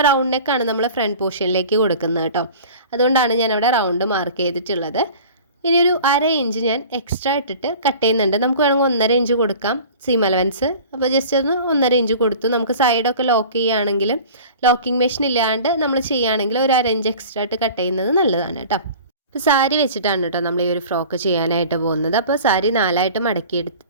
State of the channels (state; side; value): inverted; both; correlation -0.42